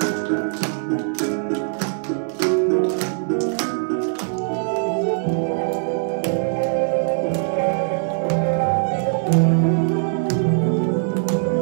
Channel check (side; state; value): left; silent; digital silence